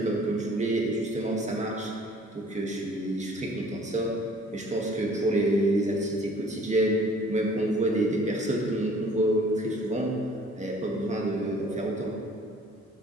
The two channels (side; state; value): both; normal; correlation 0.54